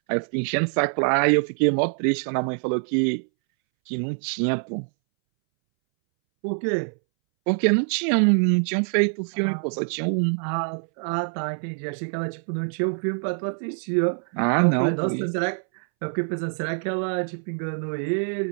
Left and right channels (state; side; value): silent; left; 62 dB below the other